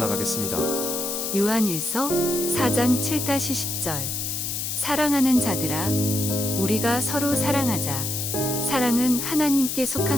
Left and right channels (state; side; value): noise; left; hiss, 3 dB below the sound